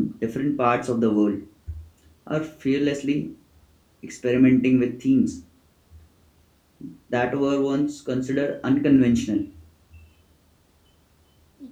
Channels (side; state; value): both; identical; correlation 1.00